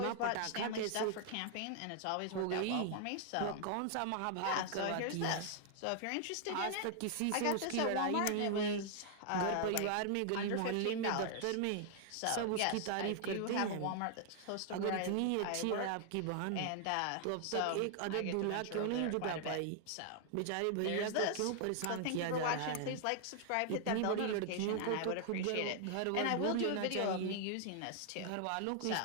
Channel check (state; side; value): different; both; correlation 0.00